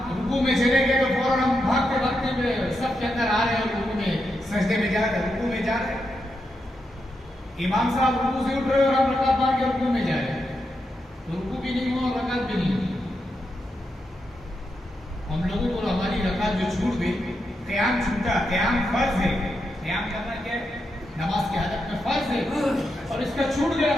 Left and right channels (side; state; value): both; normal; correlation 0.85